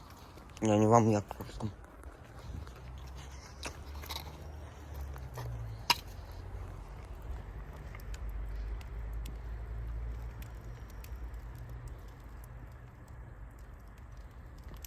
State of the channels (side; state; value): both; identical; correlation 1.00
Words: Я не вам, я просто.